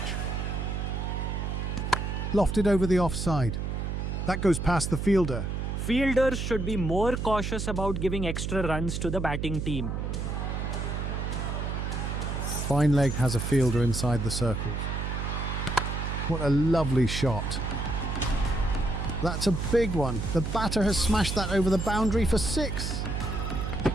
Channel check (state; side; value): noise; right; hum, 2 dB below the sound